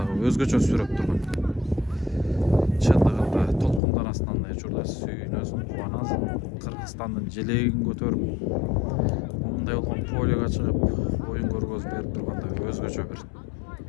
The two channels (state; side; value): drops out; right; at 3.8 s